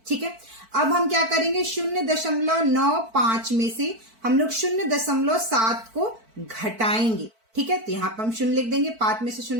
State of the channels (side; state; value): left; late; 4.5 ms